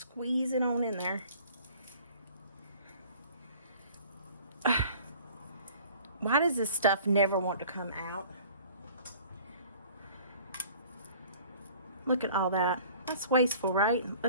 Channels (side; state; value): both; inverted; correlation -0.49